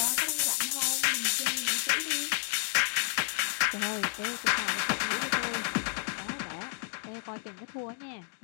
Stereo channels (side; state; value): right; silent; 57 dB below the other